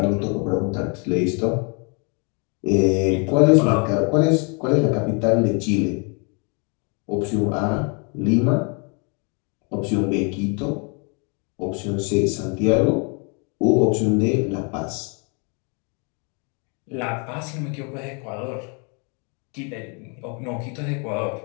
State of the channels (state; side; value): quieter; right; 35.5 dB